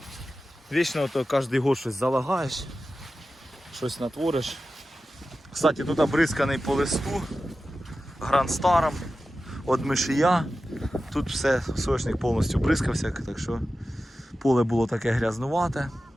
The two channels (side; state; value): both; normal; correlation 0.94